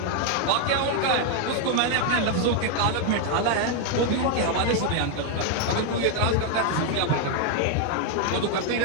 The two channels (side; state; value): both; different; correlation 0.01